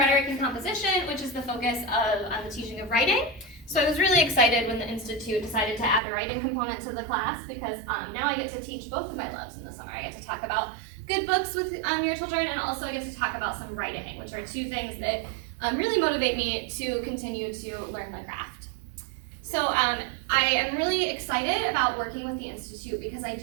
and composition, which is the focus of the teaching of writing. So I was really excited when the Institute decided to add a writing component to the class, because now I get to teach both of my loves in the summer. I get to talk about good books with your children, and also I get to talk about some writing, which are two things that really motivate me to continue to learn the craft. So I am really excited about working with the Institute because I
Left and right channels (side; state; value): left; drops out; at 6.0 s